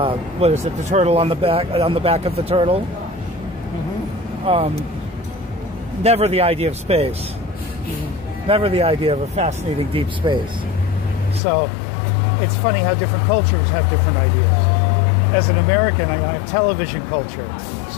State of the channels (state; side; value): drops out; right; at 11.4 s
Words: What is it? The turtle on the back of the turtle. Mm-hmm. Never the idea of space. Never the idea of a fascinating deep space. So it's funny how different cultures have different ideas. As an American, I have television culture,